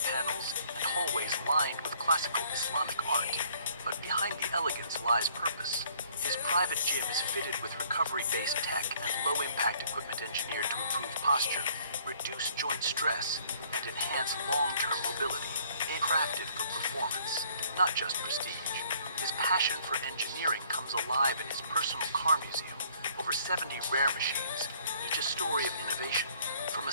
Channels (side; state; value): both; inverted; correlation -0.60